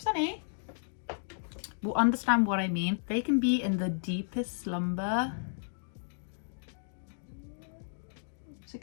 Will understand what I mean. They can be in the deepest slumber. It's a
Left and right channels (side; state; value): right; silent; digital silence